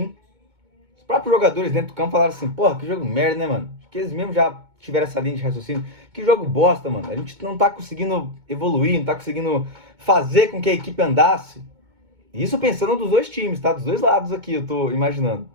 Os próprios jogadores dentro do campo falaram assim, porra, que jogo merda, né, mano? Acho que eles mesmos já tiveram essa linha de raciocínio. Que jogo bosta, mano. A gente não tá conseguindo evoluir, não tá conseguindo fazer com que a equipe andasse. Isso pensando dos dois times, tá? Dos dois lados aqui, eu tô imaginando.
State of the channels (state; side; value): late; left; 2.2 ms